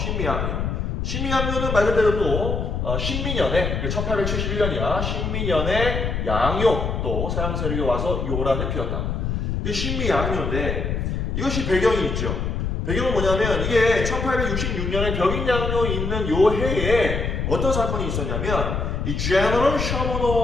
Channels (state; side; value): noise; left; rumble, 1 dB below the sound